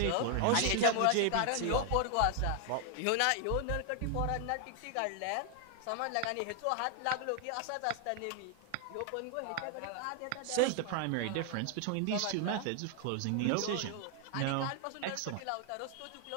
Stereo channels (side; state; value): both; different; correlation 0.00